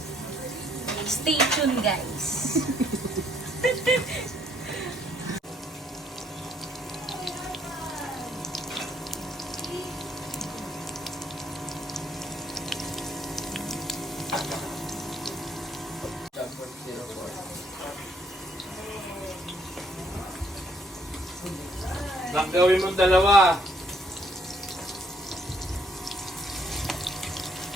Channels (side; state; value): both; normal; correlation 0.68